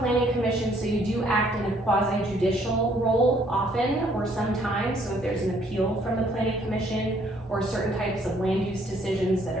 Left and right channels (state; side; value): normal; both; correlation 0.65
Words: commission, so you do act in a quasi-judicial role often or sometimes. So if there's an appeal from the planning commission or certain types of land use decisions that